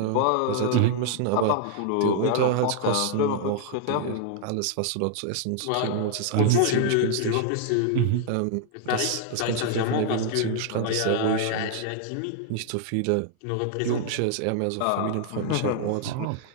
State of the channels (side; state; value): both; different; correlation 0.00